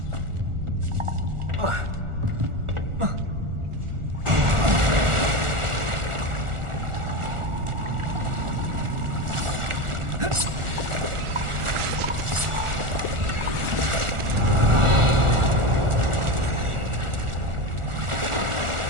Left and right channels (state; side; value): late; left; 1.4 ms